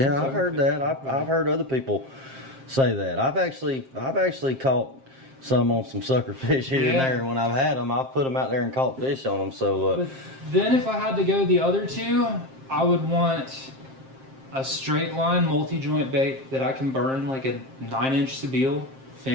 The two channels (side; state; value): left; late; 7.6 ms